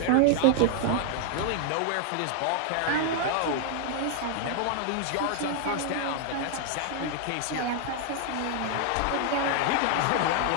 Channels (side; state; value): both; different; correlation 0.00